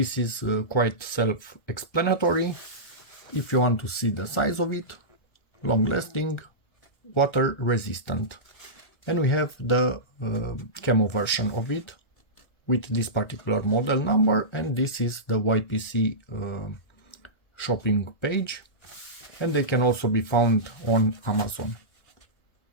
is quite self-explanatory. If you want to see the size of it, long-lasting, water-resistant. And we have the camo version of it with this particular model number, and this is the YPC shopping page, and they can also be found on Amazon.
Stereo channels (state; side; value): late; right; 1.7 ms